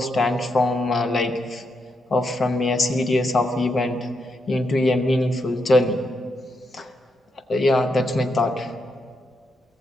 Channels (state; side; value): normal; both; correlation 0.81